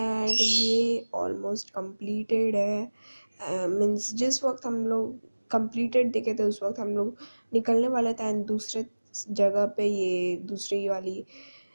ये ऑलमोस्ट कंप्लीटेड है। मीन्स जिस वक्त हम लोग कंप्लीटेड देखे थे उस वक्त हम लोग निकलने वाले थे एंड दूसरे जगह पे ये दूसरी वाली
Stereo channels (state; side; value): inverted; both; correlation -1.00